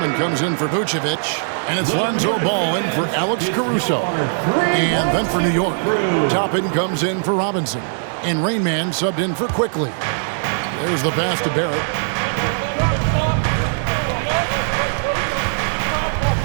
comes in for Vucevic, and it's Lonzo Ball in for Alex Caruso. And then for New York, Toppin comes in for Robinson, and Rain Man subbed in for Quickly. There's the pass to Barrett.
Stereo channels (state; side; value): silent; left; digital silence